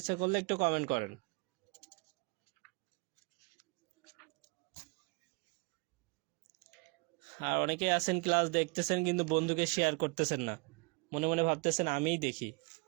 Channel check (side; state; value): left; quieter; 30.7 dB